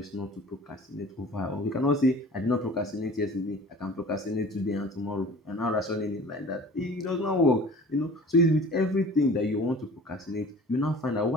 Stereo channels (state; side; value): normal; both; correlation 0.44